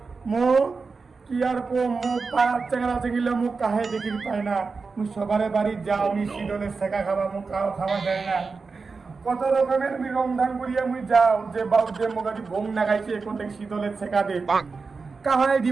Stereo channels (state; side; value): quieter; left; 4.5 dB